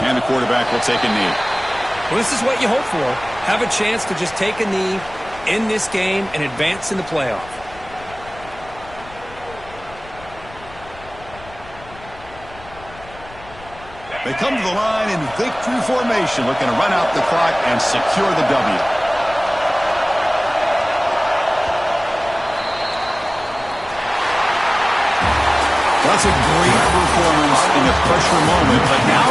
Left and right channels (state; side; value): noise; left; rumble, 20 dB below the sound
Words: And the quarterback will take a knee. Well, this is what you hope for. Have a chance to just take a knee end this game and advance in the playoff. They come to the line in victory formation, looking to run out the clock and secure the W. That's a great performance in a pressure moment, but now